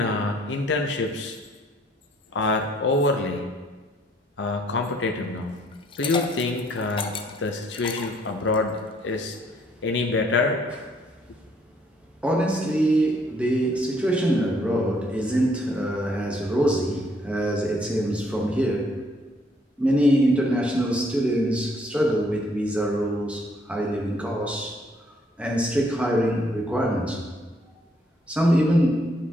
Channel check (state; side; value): normal; both; correlation 0.66